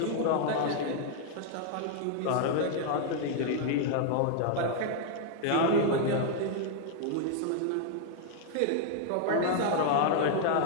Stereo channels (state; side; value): different; both; correlation 0.00